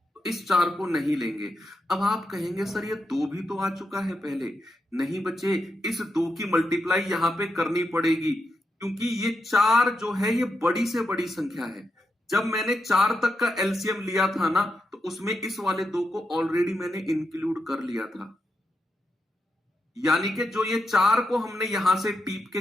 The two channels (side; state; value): both; normal; correlation 0.85